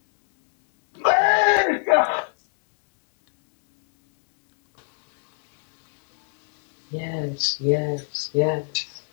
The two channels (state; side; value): silent; right; digital silence